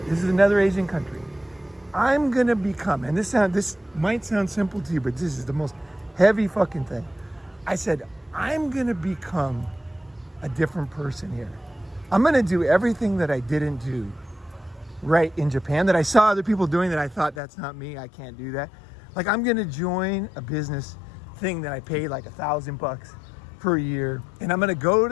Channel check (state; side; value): drops out; right; at 17.4 s